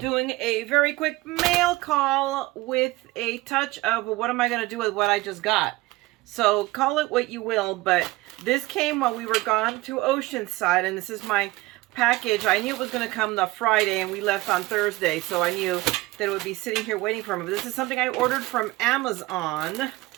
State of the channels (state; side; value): quieter; left; 20.1 dB